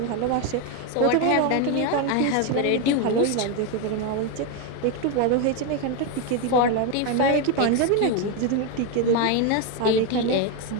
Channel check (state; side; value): different; both; correlation 0.02